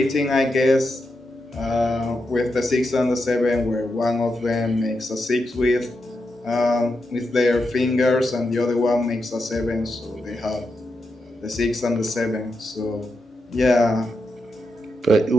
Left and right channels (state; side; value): normal; both; correlation 0.86